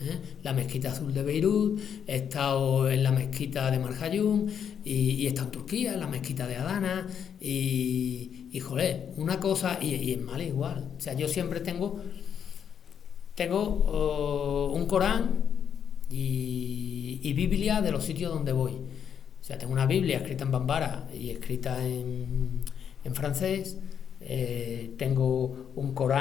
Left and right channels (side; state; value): right; quieter; 8.1 dB